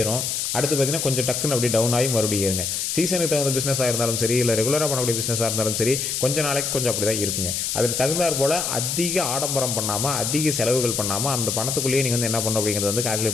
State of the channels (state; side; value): noise; left; hiss, 1 dB below the sound